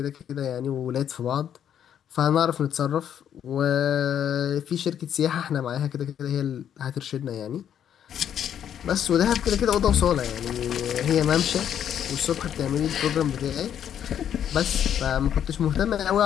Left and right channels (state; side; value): quieter; right; 9.4 dB